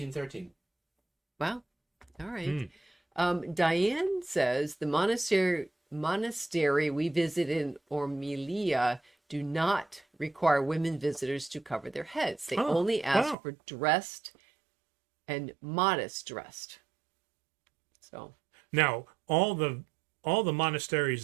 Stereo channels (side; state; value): left; drops out; at 13.4 s